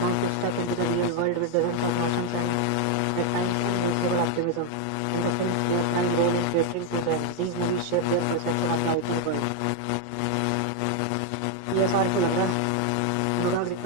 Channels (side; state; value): both; different; correlation 0.01